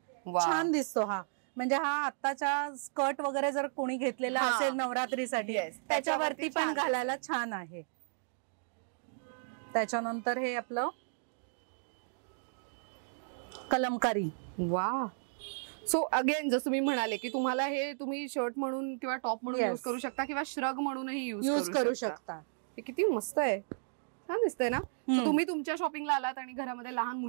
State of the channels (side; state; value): left; silent; digital silence